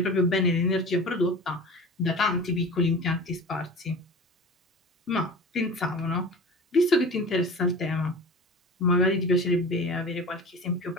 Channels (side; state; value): both; normal; correlation 0.36